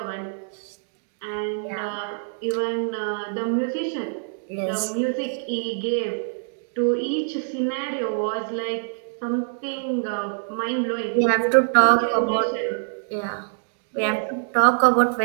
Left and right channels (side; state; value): left; silent; digital silence